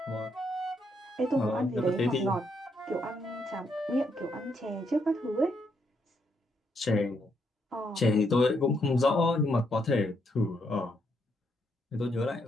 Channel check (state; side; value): normal; both; correlation 0.76